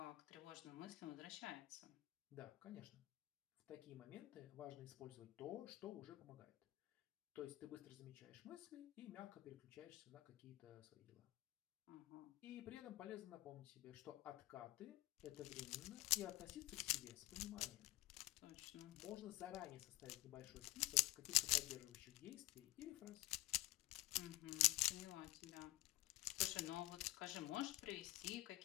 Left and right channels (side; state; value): right; quieter; 18.3 dB